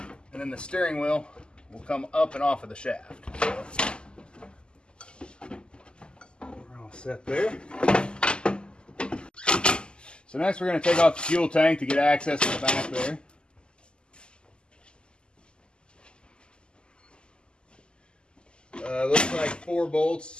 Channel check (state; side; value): late; right; 0.049 ms